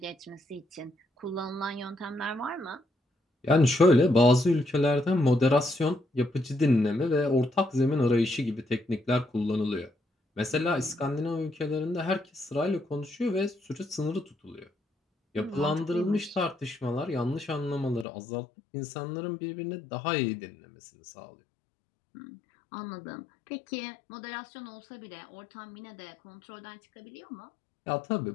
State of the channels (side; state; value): right; drops out; at 18.1 s